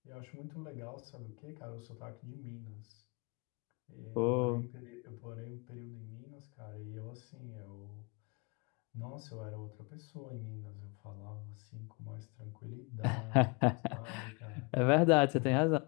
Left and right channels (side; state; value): right; quieter; 31.2 dB